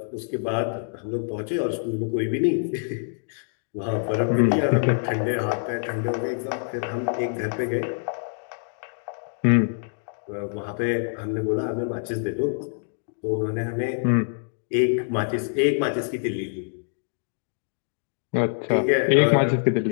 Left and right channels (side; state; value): right; silent; digital silence